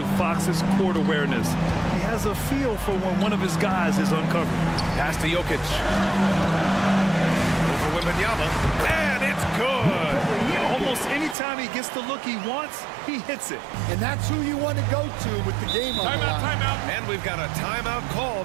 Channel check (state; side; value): drops out; left; at 11.4 s